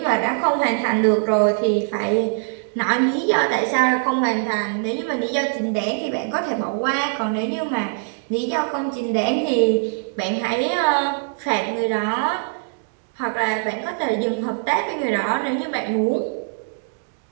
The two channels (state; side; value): silent; left; 64 dB below the other